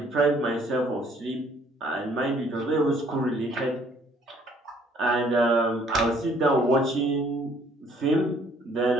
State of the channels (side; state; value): both; normal; correlation 0.61